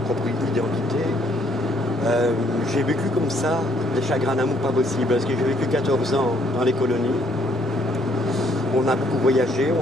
identité. J'ai vécu comme ça des chagrins d'amour pas possibles, parce que j'ai vécu 14 ans dans les colonies. On a beaucoup voyagé,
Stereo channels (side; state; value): both; normal; correlation 0.67